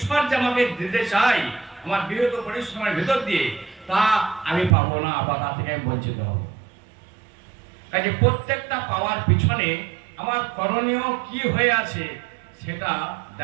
যে আমাকে দিতে চাই আমার বৃহৎ পরিশ্রমের ভেতর দিয়ে, তা আমি পাবো না বা তা থেকে আমি বঞ্চিত হব। কাজে প্রত্যেকটা পাওয়ার পিছনে আমার করণীয় কি হয়ে আছে সেটা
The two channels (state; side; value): drops out; left; at 4.8 s